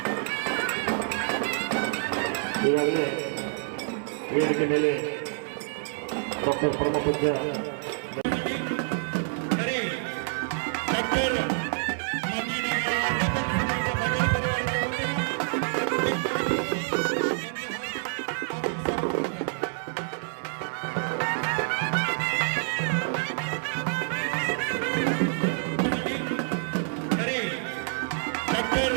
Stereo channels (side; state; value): left; silent; 60 dB below the other